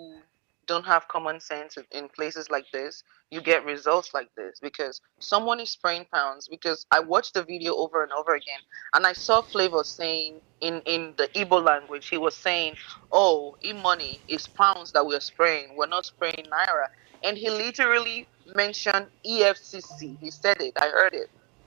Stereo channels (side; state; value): left; quieter; 30.8 dB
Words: don't have common sense in places like this, you get results like this because someone is spraying pounds. Because I watched the video over and over again, and I saw Flavor saying in the Igbo language, he was saying, "Oh, e-money is pounds that we're spraying. We're not spraying naira." And he literally mentioned EFCC. He said it. I heard it.